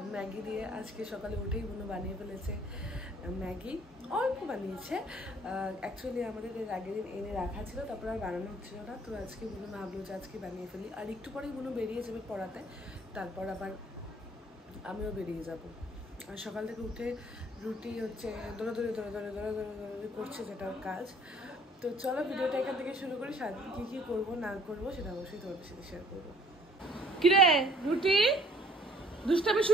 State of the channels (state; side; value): normal; both; correlation 0.58